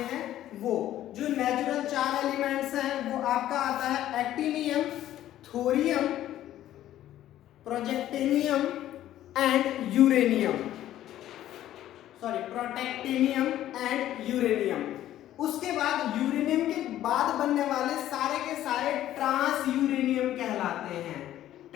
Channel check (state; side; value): quieter; right; 12.9 dB